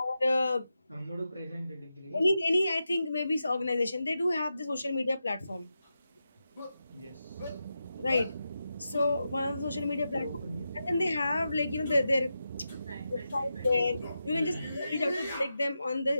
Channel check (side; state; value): both; inverted; correlation -0.89